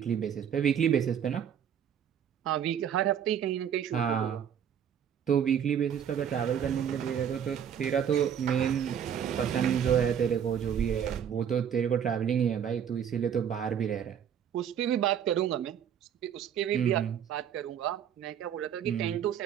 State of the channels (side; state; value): left; quieter; 8.7 dB